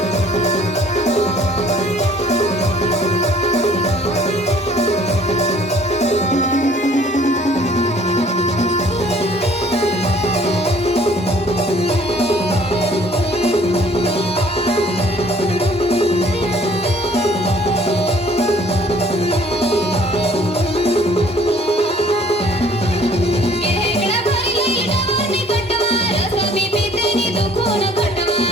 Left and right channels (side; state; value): both; normal; correlation 0.57